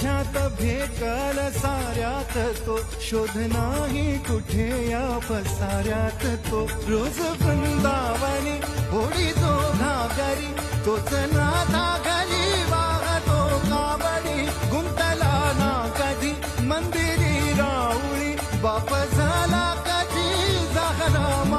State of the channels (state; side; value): identical; both; correlation 1.00